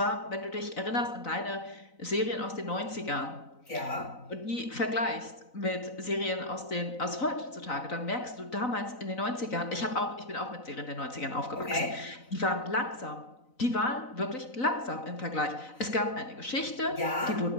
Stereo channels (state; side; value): late; right; 4.0 ms